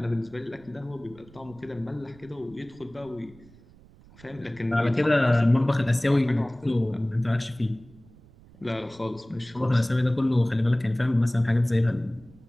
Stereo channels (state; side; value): noise; right; rumble, 24 dB below the sound